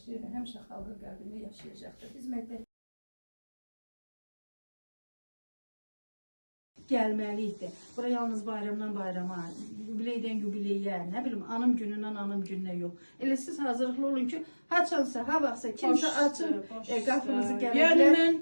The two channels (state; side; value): inverted; both; correlation -1.00